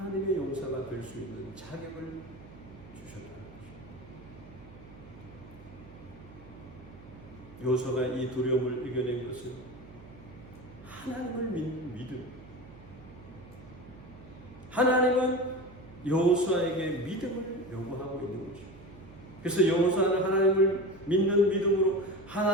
용사가 될 수 있는 자격을 주셨다는 것입니다. 여호수아가 이 두려움을 이겨낸 것은 하나님을 믿는 믿음. 하나님은 여호수아에게 믿음을 요구하고 있는 것입니다. 그래서 여호수아는 하나님을 믿는 믿음으로,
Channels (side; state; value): right; noise; hum, 19 dB below the sound